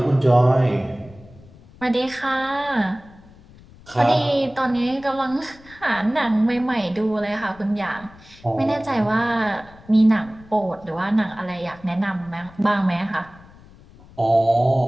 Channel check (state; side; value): noise; left; rumble, 23 dB below the sound